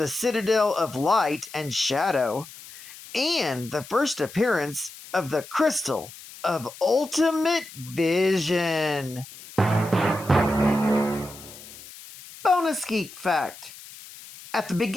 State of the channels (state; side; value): noise; left; hiss, 17 dB below the sound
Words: Citadel of Light and Shadow, and the first appearance of the Crystal of Ultimate Vision. Bonus Geek Fact. At the